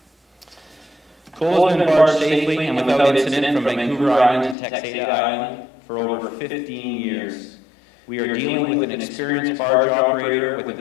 Coal has been barged safely and without incident from Vancouver Island to Texada Island for over 15 years. We are dealing with an experienced barge operator with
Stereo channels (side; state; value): right; drops out; at 4.5 s